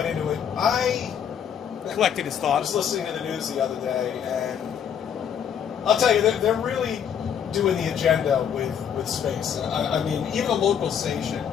into it, I Collected his was thoughts. listening to the news the other day, and I'll tell you, they're really doing the agenda with space. I mean, even a local station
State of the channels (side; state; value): right; quieter; 8.4 dB